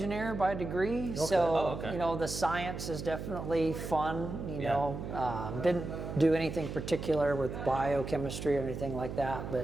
by degree, so the science is definitely fun. Didn't do anything particular with biochemistry or anything like that,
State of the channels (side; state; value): right; noise; hum, 7 dB below the sound